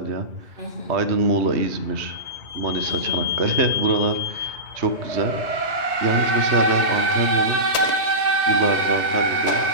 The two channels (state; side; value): late; left; 3.2 ms